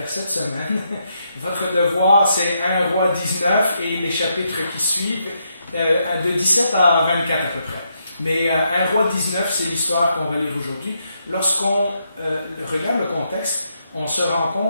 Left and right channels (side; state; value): both; inverted; correlation -0.79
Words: cette semaine. Votre devoir, c'est 1 Roi 19 et les chapitres qui suivent, de 17 à 24 à peu près. Mais 1 Roi 19, c'est l'histoire qu'on va lire aujourd'hui. Lorsqu'on regarde le contexte, on se rend